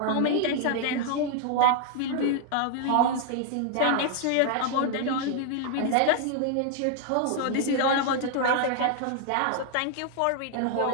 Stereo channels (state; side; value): different; both; correlation 0.00